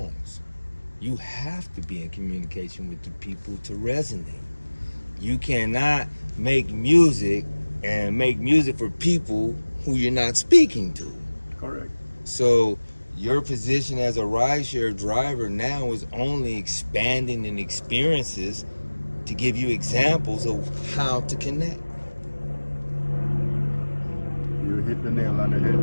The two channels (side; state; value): both; inverted; correlation -1.00